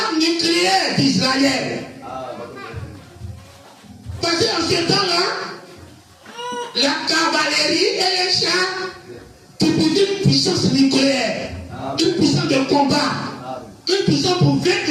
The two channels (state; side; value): identical; both; correlation 1.00